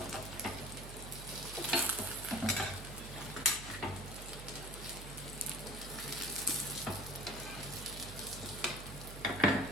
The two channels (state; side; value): noise; right; hum, 10 dB below the sound